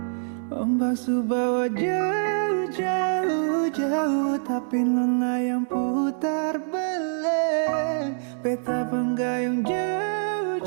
Ombak subawa jauh, jauh, jauh, tapi nona yang putar balik. Beta penggayung jauh,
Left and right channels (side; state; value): left; silent; digital silence